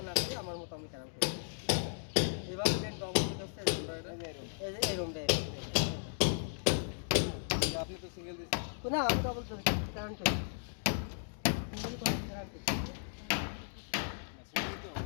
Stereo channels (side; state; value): right; silent; digital silence